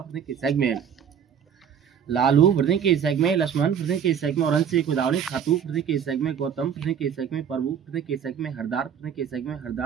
के सैक में लालू पृथ्वी के सैक में लक्ष्मण पृथ्वी के सैक में औरन से कोदावरी खातू पृथ्वी के सैक में गौतम पृथ्वी के सैक में प्रभु पृथ्वी के सैक में हरदार पृथ्वी के सैक में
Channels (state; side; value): quieter; left; 8.1 dB